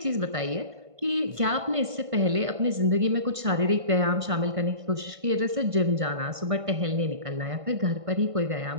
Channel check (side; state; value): left; late; 1.5 ms